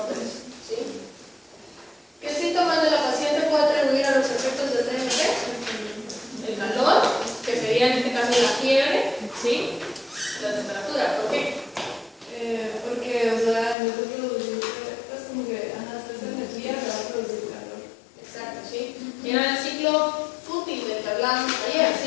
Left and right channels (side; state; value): right; drops out; at 13.8 s